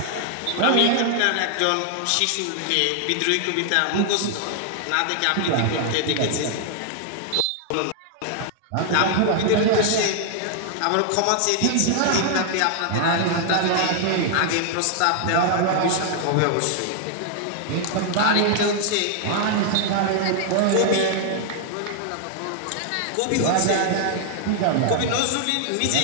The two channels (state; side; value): different; both; correlation 0.00